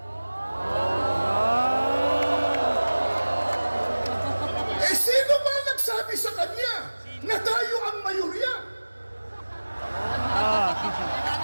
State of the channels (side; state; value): both; inverted; correlation -1.00